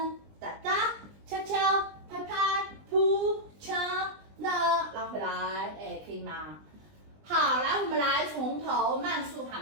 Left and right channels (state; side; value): late; left; 20 ms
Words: 哒哒，敲敲，拍拍，扑掐那，拉回来，哎，可以吗？好，来，我们来从头慢速